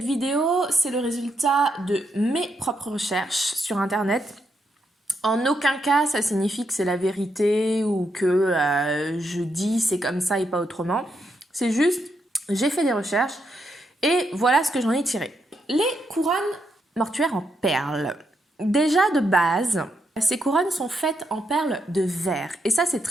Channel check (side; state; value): both; normal; correlation 0.80